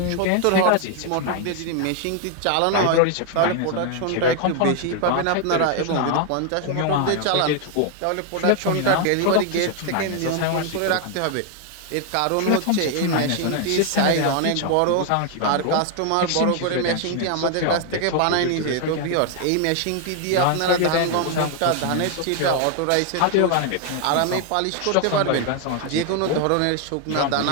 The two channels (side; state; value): both; different; correlation 0.00